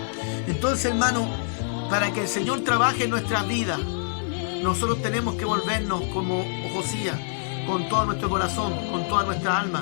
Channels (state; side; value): silent; right; digital silence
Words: Entonces, hermano, para que el Señor trabaje en nuestras vidas, nosotros tenemos que volvernos como Josías, con todo nuestro corazón, con toda nuestra